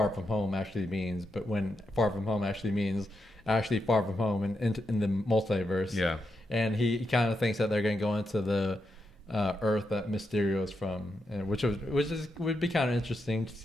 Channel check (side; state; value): both; normal; correlation 0.85